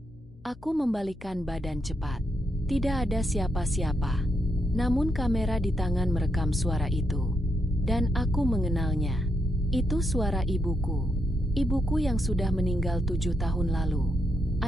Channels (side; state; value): both; normal; correlation 0.80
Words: Aku membalikkan badan cepat. Tidak ada siapa-siapa. Namun kamera di tangan merekam suara itu. Dan aku mengenalnya. Itu suara ibuku. Ibuku yang sudah meninggal 7 tahun lalu.